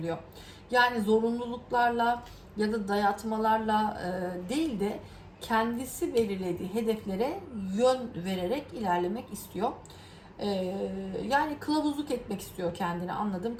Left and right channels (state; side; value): identical; both; correlation 1.00